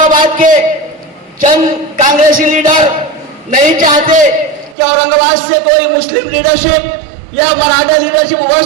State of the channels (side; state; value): left; drops out; at 4.8 s